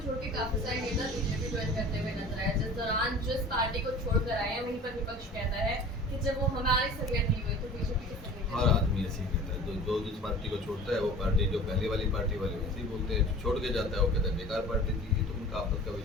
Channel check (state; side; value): normal; both; correlation 0.41